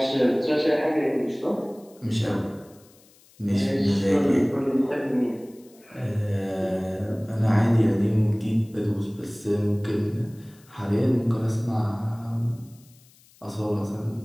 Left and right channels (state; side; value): noise; left; hiss, 28 dB below the sound